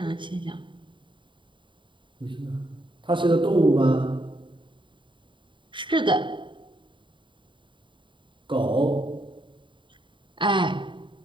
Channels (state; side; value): late; left; 0.23 ms